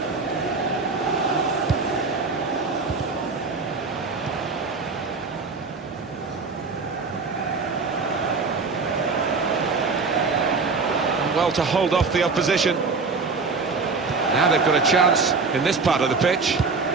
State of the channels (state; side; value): quieter; left; 4.4 dB